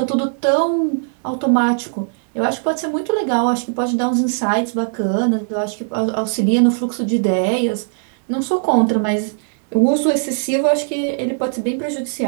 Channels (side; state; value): left; silent; digital silence